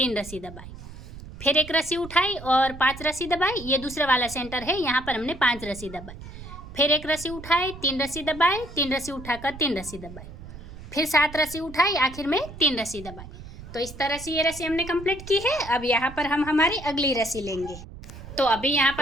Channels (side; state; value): right; noise; rumble, 14 dB below the sound